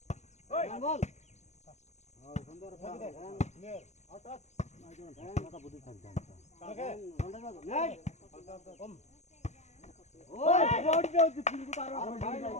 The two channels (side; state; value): right; late; 0.33 ms